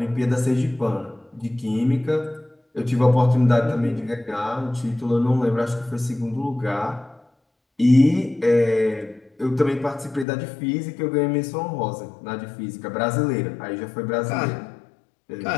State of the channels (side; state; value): right; drops out; at 10.2 s